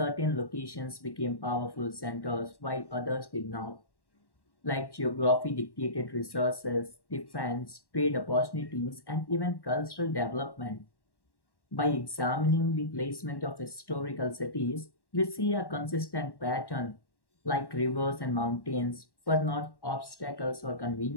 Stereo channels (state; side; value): late; right; 1.1 ms